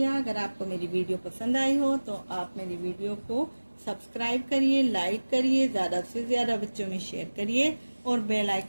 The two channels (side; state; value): both; inverted; correlation -1.00